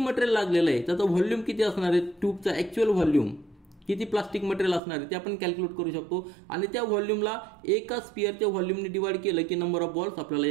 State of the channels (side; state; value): left; drops out; at 4.8 s